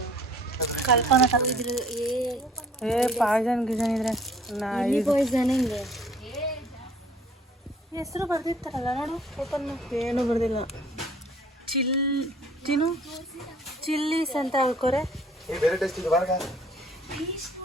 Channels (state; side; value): normal; both; correlation 0.56